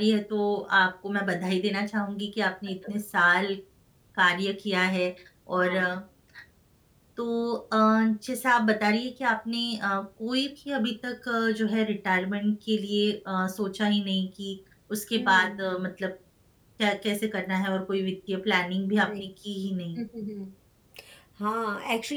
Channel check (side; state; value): both; identical; correlation 1.00